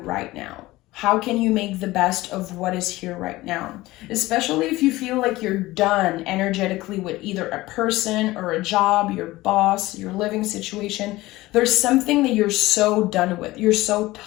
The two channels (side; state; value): right; quieter; 18.6 dB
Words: now. How can you make the best of what is here right now? Especially if you feel like you're done energetically with either a person or a job, your boss, your living situation. There's something that you're so done with. You're so